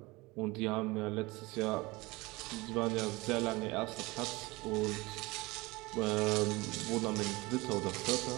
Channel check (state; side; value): quieter; left; 22.6 dB